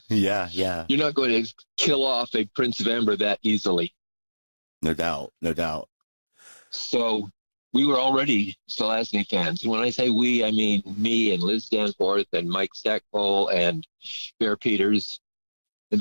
Yeah, yeah. You're not going to kill off a Prince of Amber that easily. No doubt, no doubt. So we were already Zelazny fans. And when I say we, I mean me and Liz Danforth and Mike Stackpole and Bear Peters and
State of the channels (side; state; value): both; inverted; correlation -1.00